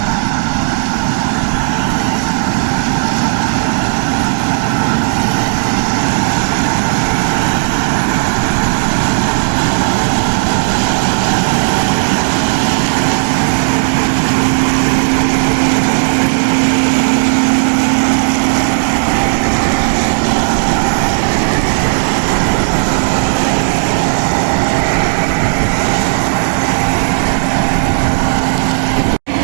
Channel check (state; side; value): silent; left; digital silence